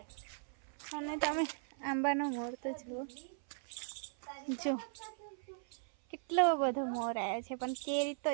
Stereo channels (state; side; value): silent; left; 52 dB below the other